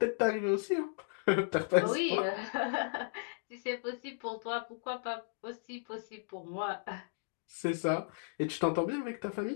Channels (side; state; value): right; silent; digital silence